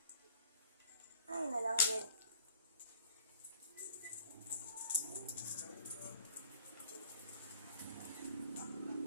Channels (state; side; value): inverted; both; correlation -0.51